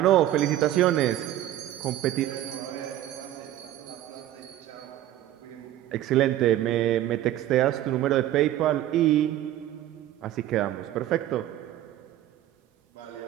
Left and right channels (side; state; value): left; quieter; 13.2 dB